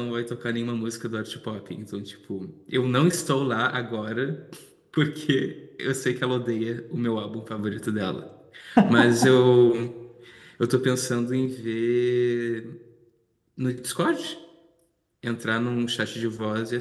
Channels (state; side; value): identical; both; correlation 1.00